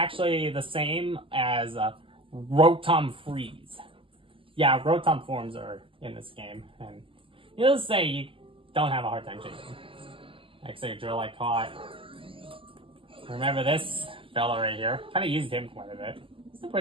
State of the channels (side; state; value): left; late; 0.25 ms